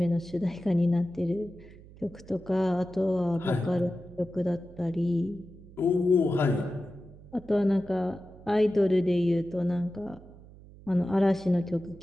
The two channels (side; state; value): right; noise; hum, 20 dB below the sound